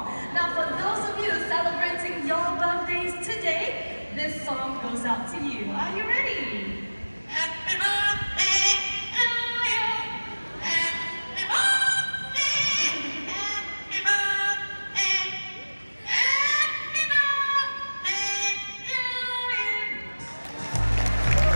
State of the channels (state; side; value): inverted; both; correlation -1.00